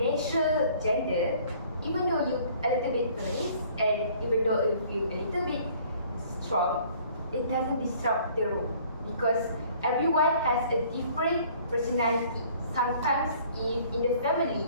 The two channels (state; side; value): inverted; both; correlation -0.55